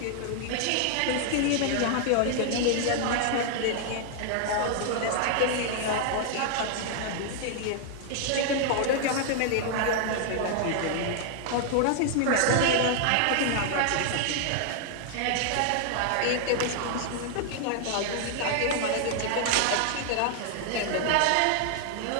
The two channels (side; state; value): both; different; correlation 0.00